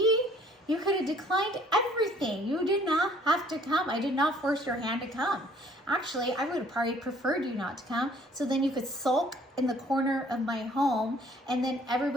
You could have declined everything. You did not have to come. I did not force your hand to come. Actually, I would have probably preferred you not to come, so then you could sulk in the corner of my home, and then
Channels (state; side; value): normal; both; correlation 0.58